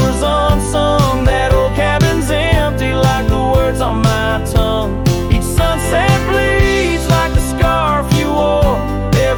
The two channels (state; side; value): identical; both; correlation 1.00